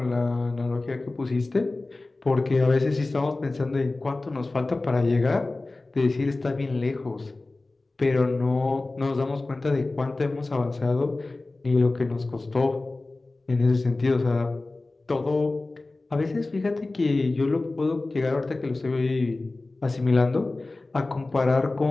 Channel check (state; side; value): quieter; right; 3.2 dB